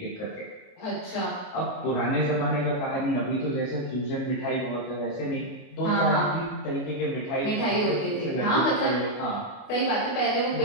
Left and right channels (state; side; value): late; right; 28 ms